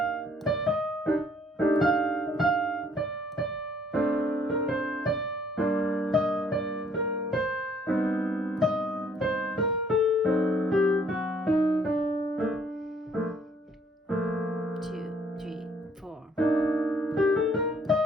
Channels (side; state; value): both; normal; correlation 0.63